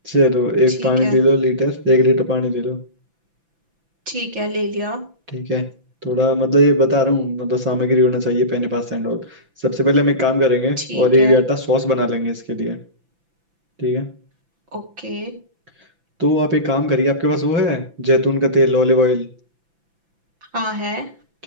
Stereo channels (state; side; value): late; left; 5.9 ms